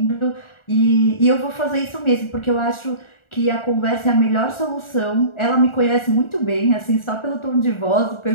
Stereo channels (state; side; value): late; right; 1.4 ms